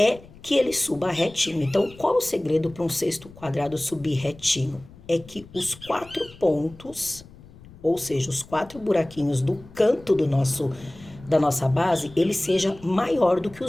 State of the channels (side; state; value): left; noise; rumble, 21 dB below the sound